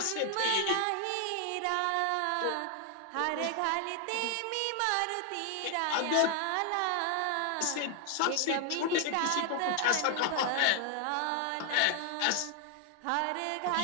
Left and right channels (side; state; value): both; different; correlation 0.00